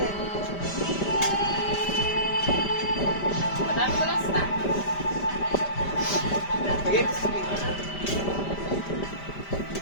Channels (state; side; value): late; right; 5.1 ms